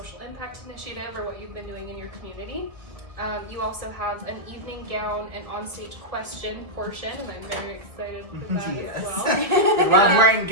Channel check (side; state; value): left; late; 1.5 ms